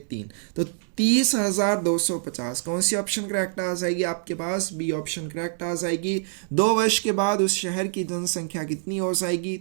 3। तो 30,250 कौन सी ऑप्शन करेक्ट आ जाएगी आपके पास? बी ऑप्शन करेक्ट आ जाएगी। 2 वर्ष के बाद उस शहर की जनसंख्या कितनी हो जाएगी?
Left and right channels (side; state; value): left; silent; digital silence